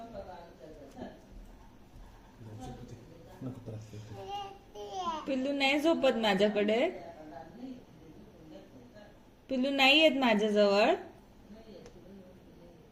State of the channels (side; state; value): both; identical; correlation 1.00